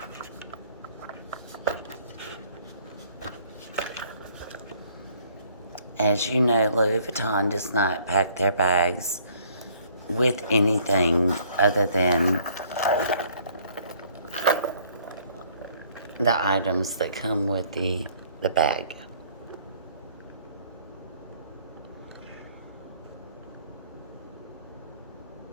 As you know, Louis Vuitton does not pack their bags with anything other than the items that come with the bag.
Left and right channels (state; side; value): inverted; both; correlation -0.61